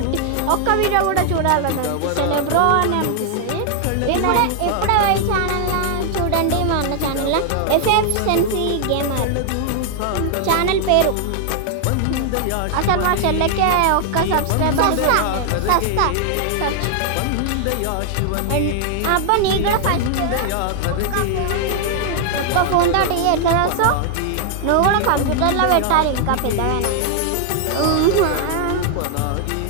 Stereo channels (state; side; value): different; both; correlation 0.00